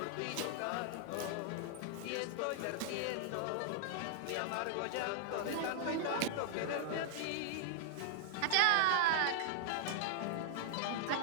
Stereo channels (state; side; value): different; both; correlation 0.00